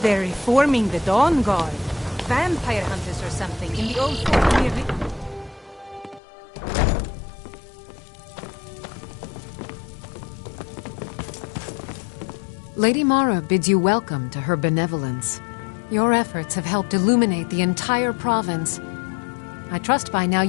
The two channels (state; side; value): drops out; right; at 6.2 s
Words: they're reforming the Dawn Guard. Vampire hunters or something in the old fort near the... Lady Mara bids you welcome to her benevolence. Your efforts have helped illuminate the entire province. I trust by now